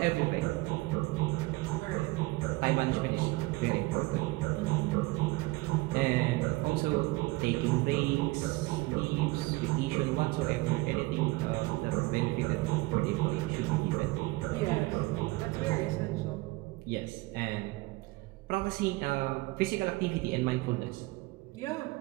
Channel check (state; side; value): quieter; left; 22.0 dB